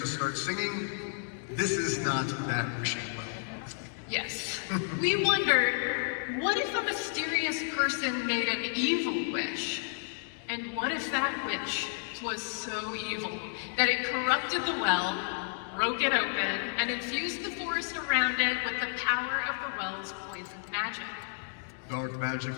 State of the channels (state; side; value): silent; right; digital silence